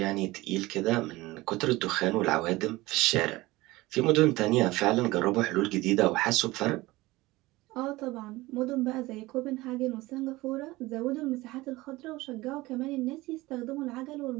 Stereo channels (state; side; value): quieter; left; 19.8 dB